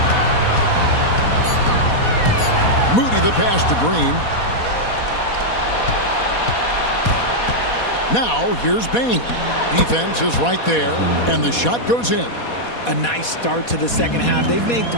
Moody the pass to Green. Now here's Bane. Defense is right there, and the shot goes in. A nice start to the second half. They've made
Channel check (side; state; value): right; late; 4.2 ms